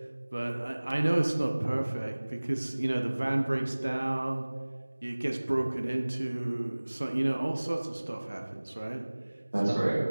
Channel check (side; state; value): both; inverted; correlation -1.00